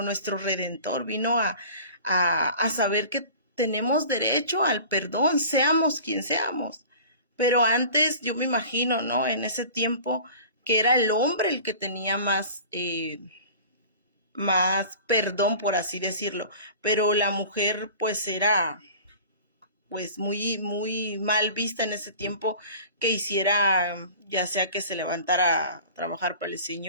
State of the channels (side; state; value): both; inverted; correlation -0.42